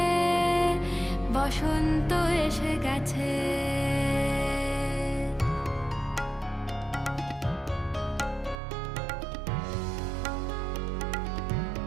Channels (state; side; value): drops out; left; at 8.6 s